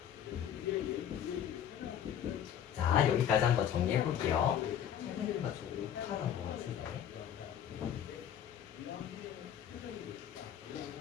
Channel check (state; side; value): quieter; right; 9.5 dB